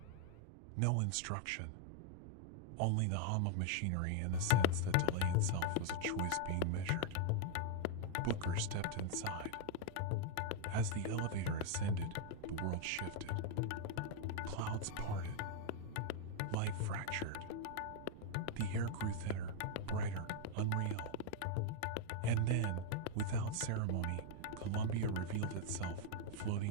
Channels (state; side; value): different; both; correlation 0.00